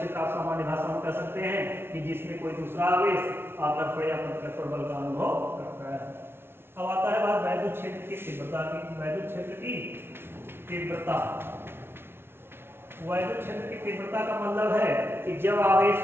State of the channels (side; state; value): left; late; 0.11 ms